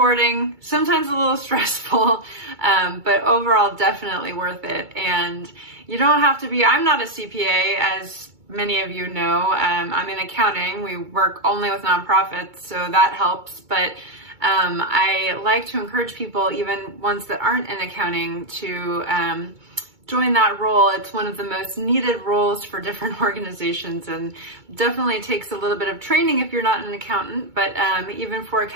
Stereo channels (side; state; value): left; late; 2.3 ms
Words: sometimes a little stressful, but overall definitely worth it. And you don't have to be, I'm not a CPA, as many of you know. I'm in accounting. We work only with nonprofits, so that helps. But I like to encourage people, even ones that aren't in accounting, to join that role. It's one of the most needed roles for different organizations, and definitely takes a little bit of training if you're not an accountant, but even for